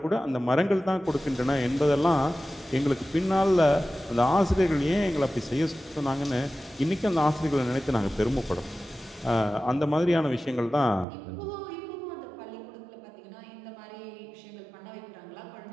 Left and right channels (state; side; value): drops out; left; at 11.1 s